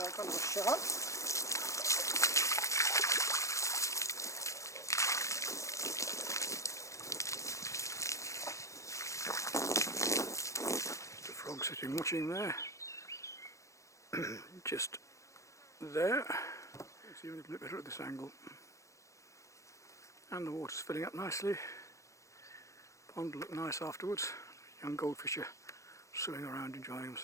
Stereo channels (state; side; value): late; right; 0.15 ms